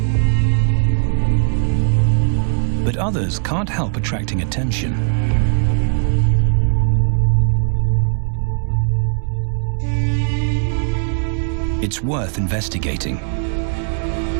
But others can't help attracting attention. It's worth investigating.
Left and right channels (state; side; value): silent; left; 67 dB below the other